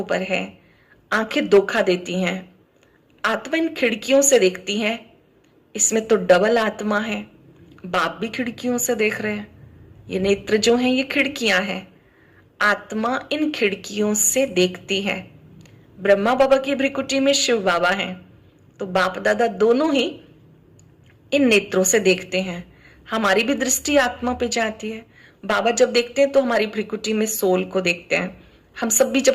पर है। आंखें धोखा देती हैं। आत्मा इन खिड़कियों से देखती है। इसमें तो डबल आत्मा है। बाप भी खिड़कियों से देख रहे हैं। ये नेत्र जो हैं ये खिड़कियां हैं। आत्मा इन खिड़कियों से देखती है। ब्रह्मा बाबा की भ्रिकुटी में शिव बाबा हैं, तो बाप दादा दोनों ही इन नेत्रों से देखते हैं। हमारी भी दृष्टि आत्मा पे जाती है। बाबा जब देखते हैं तो हमारी भ्रिकुटी में सोल को देखते हैं। हम सब भी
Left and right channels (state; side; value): identical; both; correlation 1.00